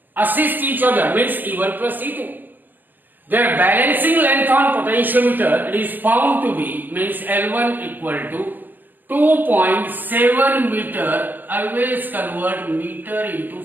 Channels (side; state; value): left; late; 0.088 ms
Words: assist each other, means E1 plus E2, their balancing length on potentiometer, it is found to be, means L1 equal to 2.7 meter. Always convert meter into